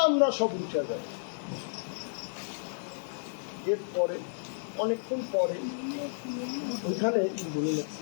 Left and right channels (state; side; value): silent; right; digital silence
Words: সব উঠে যায়। এরপরে অনেকক্ষণ পরে ওইখানে